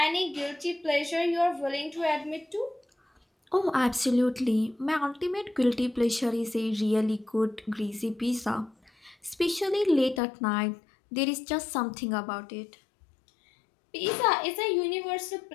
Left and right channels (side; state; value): right; drops out; at 10.2 s